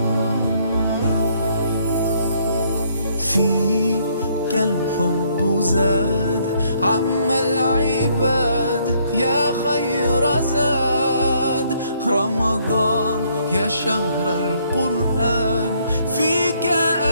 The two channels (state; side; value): inverted; both; correlation -0.67